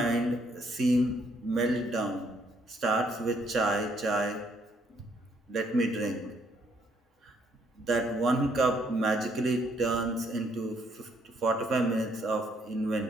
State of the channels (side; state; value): both; normal; correlation 0.69